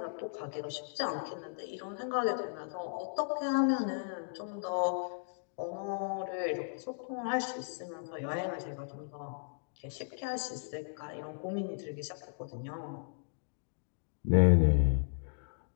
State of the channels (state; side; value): silent; right; digital silence